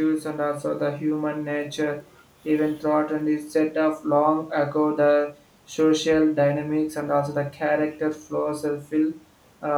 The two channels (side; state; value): both; identical; correlation 1.00